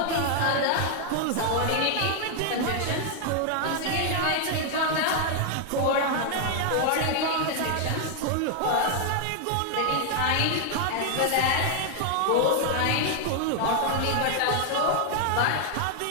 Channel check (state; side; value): different; both; correlation 0.00